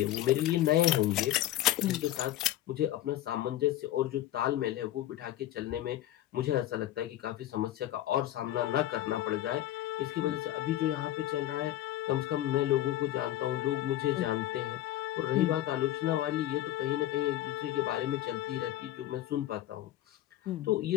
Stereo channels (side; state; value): right; quieter; 13.8 dB